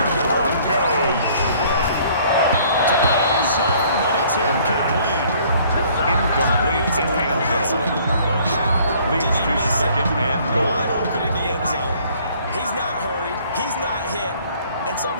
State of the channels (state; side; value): inverted; both; correlation -0.58